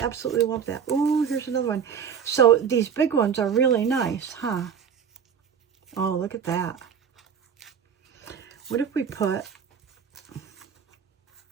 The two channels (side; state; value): left; quieter; 7.4 dB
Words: absolutely love that. Ooh, here's another one. So these big ones are really nice, huh? Oh, look at that. What if we put...